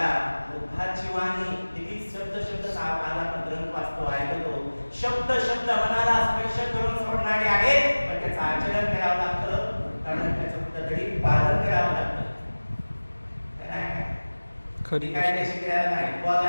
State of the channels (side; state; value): both; inverted; correlation -1.00